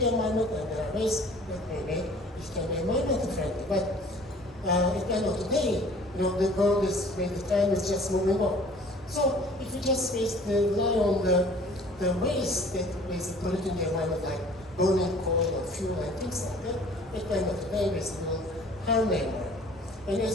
environment, and there are ways that we make which can be environmental friendly. But at the end of the day, the world is, the time is just moving on. So if we just rely on the waste that basically polluting the environment, like burning coal or fuel and things like that, at the end of the day, basically will harm the environment. And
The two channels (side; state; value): both; normal; correlation 0.50